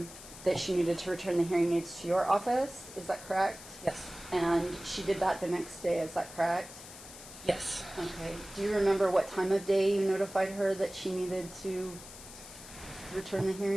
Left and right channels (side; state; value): left; noise; hiss, 15 dB below the sound